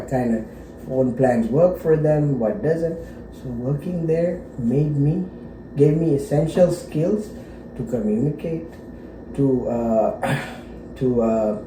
kind of phone plans work for them, what doesn't. So working there gave me essential skills to communicate, to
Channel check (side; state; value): both; identical; correlation 1.00